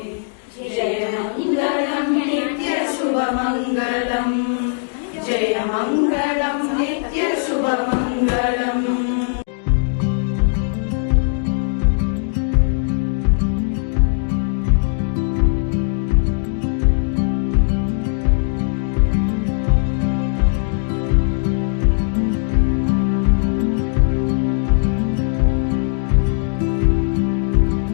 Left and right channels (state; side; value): silent; right; digital silence